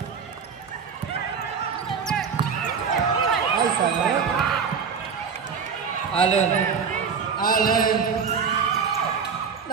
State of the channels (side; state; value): left; quieter; 6.1 dB